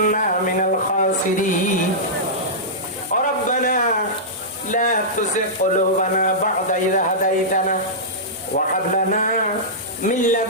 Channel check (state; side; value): normal; both; correlation -0.15